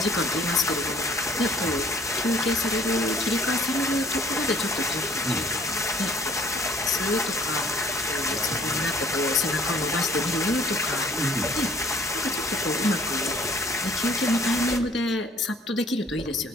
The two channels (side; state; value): both; normal; correlation 0.56